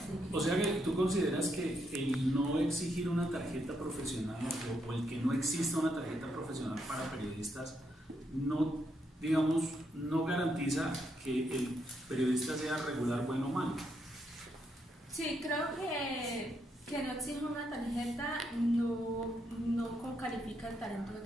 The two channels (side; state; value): both; normal; correlation 0.78